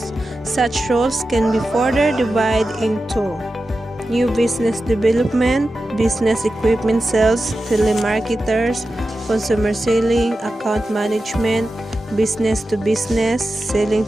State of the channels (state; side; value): normal; both; correlation 0.92